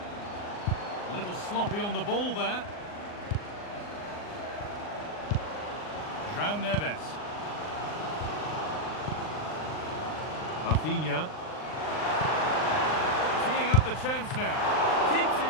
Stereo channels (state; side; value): late; right; 39 ms